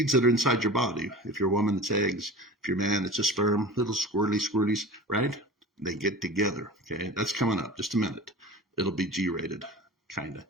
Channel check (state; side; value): normal; both; correlation 0.36